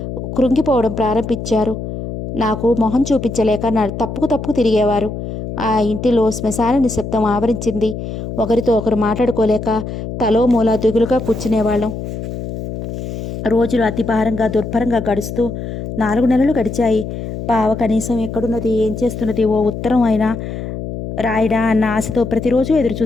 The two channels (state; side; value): noise; left; hum, 7 dB below the sound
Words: కృంగిపోవడం ప్రారంభించారు. నాకు మొహం చూపించలేక తప్పుకు తిరిగేవారు. ఆ ఇంటిలో శ్మశాన నిశ్శబ్దం ఆవరించింది. ఒకరితో ఒకరు మాట్లాడుకోలేక తలో మూల దిగులుగా కూర్చునేవాళ్ళం. రోజులు అతి భారంగా దుర్భరంగా గడుస్తూ 4 నెలలు గడిచాయి. బావ కనీసం ఎక్కడున్నది, ఏం చేస్తున్నది, ఓ ఉత్తరం అయినా రాయడా అన్న ఆశతో ప్రతిరోజు ఎదురు